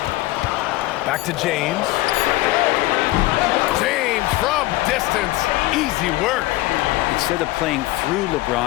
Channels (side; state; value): right; quieter; 18.4 dB